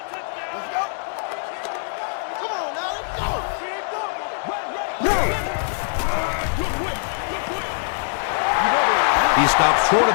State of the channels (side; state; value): right; silent; 62 dB below the other